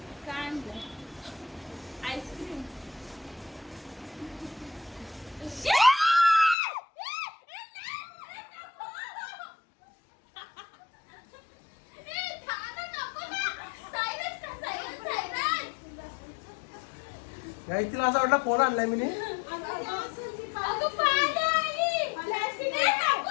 काही तिला असं वाटलं फोन आणलाय मी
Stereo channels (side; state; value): right; drops out; at 6.6 s